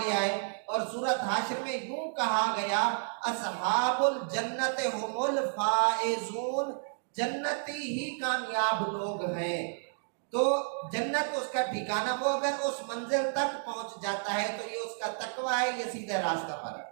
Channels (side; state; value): left; silent; digital silence